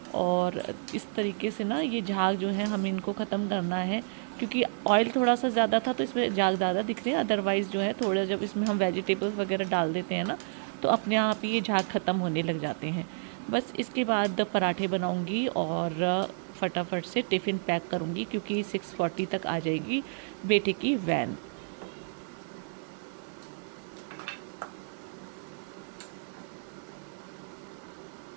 और इस तरीके से ना ये झाग जो है हमें इनको ख़त्म करना है, क्योंकि ऑयल थोड़ा सा ज़्यादा था तो इसमें झाग ज़्यादा दिख रहे हैं। अदरवाइज़ जो है थोड़ा जब इसमें हम वेजिटेबल्स वगैरह डाल देते हैं ना तो अपने आप ही ये झाग ख़त्म होने लग जाते हैं। बस इसके बाद पराठे बनाऊँगी और फटाफट से टिफ़िन पैक करूँगी, क्योंकि 6:40 तक आ जाएगी बेटे की van.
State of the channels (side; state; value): left; silent; digital silence